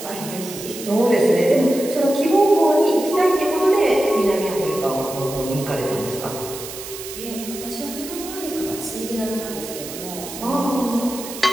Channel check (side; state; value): right; noise; hiss, 11 dB below the sound